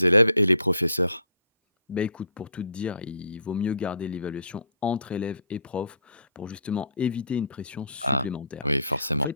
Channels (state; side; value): inverted; both; correlation -0.60